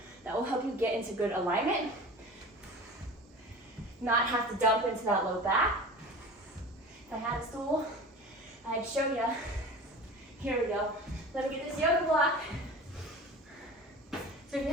That will help you get into good alignment, not have to dump into that low back. If I had a stool, I'd show you. Here we go. Let me get this yoga block. So if you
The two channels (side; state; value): both; normal; correlation 0.37